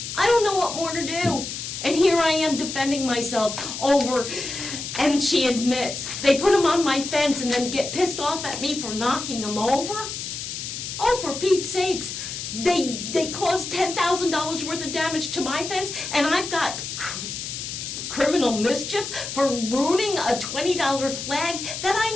I don't know what more to do. And here I am defending myself over, and she admits, they put them on my fence and then get pissed off at me for knocking them over? Oh, for Pete's sakes, They caused $10,000 worth of damage to my fence, and I've got criminal mischief for ruining a $20 flag that I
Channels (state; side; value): noise; left; hiss, 7 dB below the sound